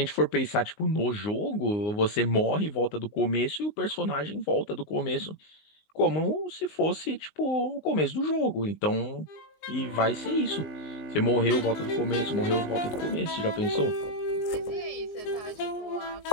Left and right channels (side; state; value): right; late; 19 ms